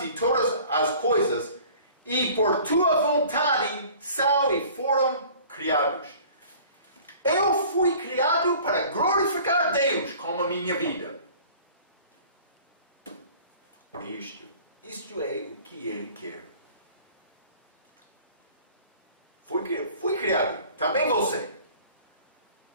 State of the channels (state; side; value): inverted; both; correlation -0.48